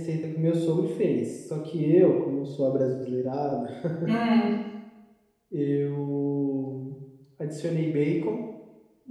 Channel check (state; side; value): identical; both; correlation 1.00